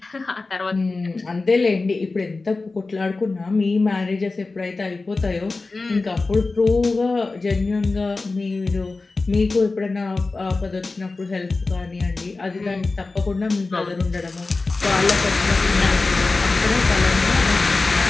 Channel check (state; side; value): quieter; right; 3.6 dB